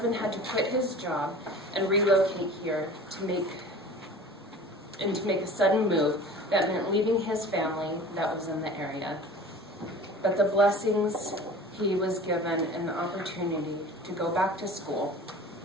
had to quit his job and relocate here to make a sudden move that meant leaving his family that was in the area. But the blessings he was given an opportunity to go back to school,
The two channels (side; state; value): both; normal; correlation 0.41